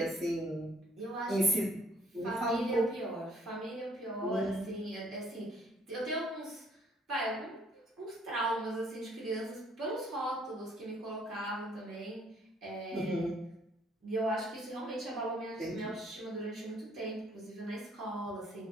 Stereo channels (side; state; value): both; normal; correlation 0.63